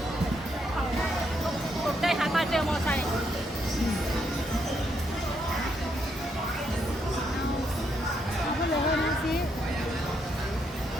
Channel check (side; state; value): both; normal; correlation 0.76